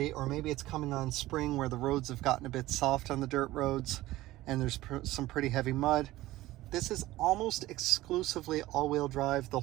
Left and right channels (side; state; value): left; quieter; 16.9 dB